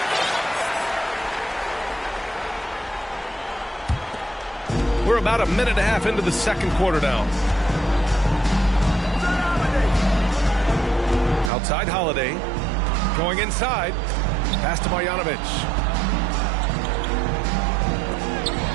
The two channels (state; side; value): drops out; left; at 11.5 s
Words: We're about a minute and a half into the second quarter now. Outside Holiday. Going inside. Pass to Marjanovic.